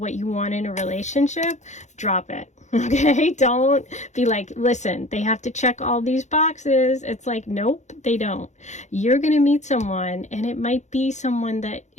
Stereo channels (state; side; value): late; right; 0.34 ms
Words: you want in a relationship, drop it. Okay, don't be like, listen, they have to check all these boxes. It's like, nope, they don't. You're going to meet someone, and it might be someone that